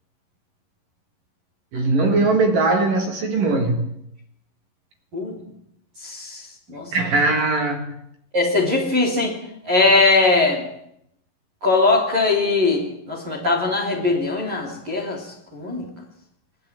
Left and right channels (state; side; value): late; left; 11 ms